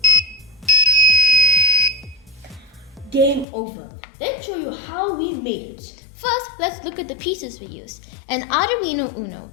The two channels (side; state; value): right; drops out; at 3.5 s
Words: game over. Let's show you how we made it. first let's look at the pieces we used. An Arduino UNO,